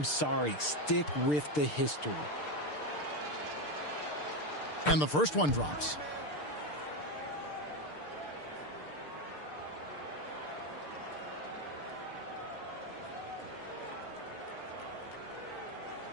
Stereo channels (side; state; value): right; late; 6.7 ms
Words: sorry. Stick with the history. And the first one drops.